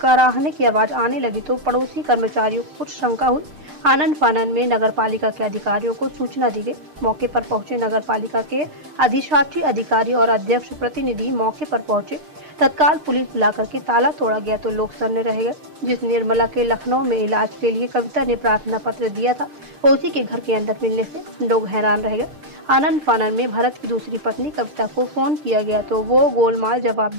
की आवाज आने लगी तो पड़ोसी कर्मचारियों को कुछ शंका हुई। आनन फानन में नगर पालिका के अधिकारियों को सूचना दी गई। मौके पर पहुंचे नगर पालिका के अधिशासी अधिकारी और अध्यक्ष प्रतिनिधि मौके पर पहुंचे। तत्काल पुलिस बुलाकर के ताला तोड़ा गया तो लोग सन्न रह गए। जिस निर्मला के लखनऊ में इलाज के लिए कविता ने प्रार्थना पत्र दिया था, उसी के घर के अंदर मिलने से लोग हैरान रह गए। आनंद फानन में भरत की दूसरी पत्नी कविता को फोन किया गया तो वो गोलमाल जवाब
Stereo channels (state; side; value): late; left; 6.6 ms